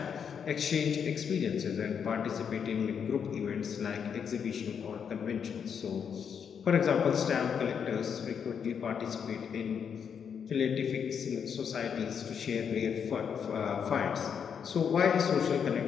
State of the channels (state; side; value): quieter; right; 7.3 dB